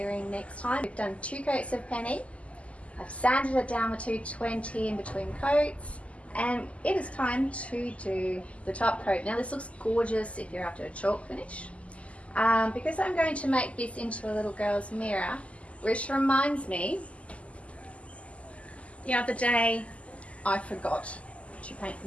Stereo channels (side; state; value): right; late; 0.063 ms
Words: next time. We've done 2 coats of penny. I've sanded it down with 220 in between coats. And it is time to do the top coat. Now this looks gorgeous if you're after a chalk finish. Because I'm going to make this into a little girl's mirror, which reminds me, the other day I forgot to paint